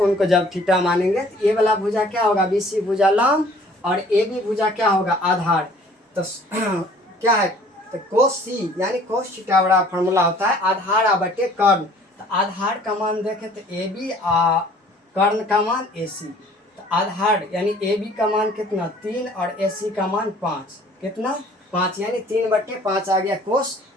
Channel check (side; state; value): both; normal; correlation 0.54